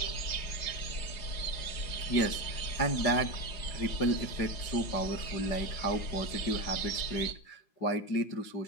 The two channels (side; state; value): right; late; 5.5 ms